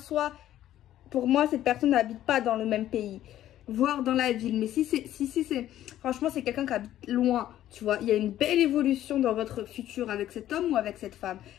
cette personne n'habite pas dans le même pays, voire dans la ville. Mais si c'est... Franchement, c'est quelqu'un qui habite loin, tu vois. Il y a une belle évolution dans votre futur avec cet homme ou avec cette femme.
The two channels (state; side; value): quieter; right; 12.6 dB